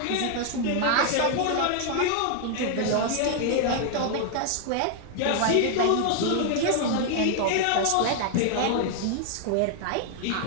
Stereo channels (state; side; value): different; both; correlation 0.00